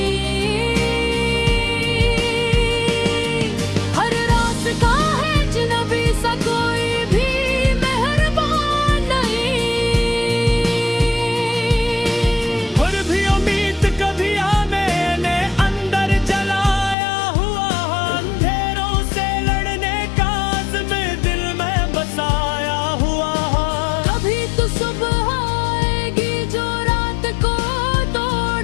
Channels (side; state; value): right; drops out; at 16.9 s